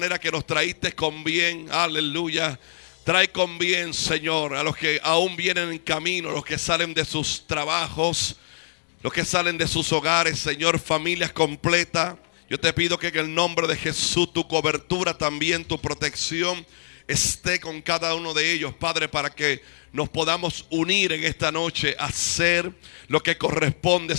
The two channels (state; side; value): silent; right; digital silence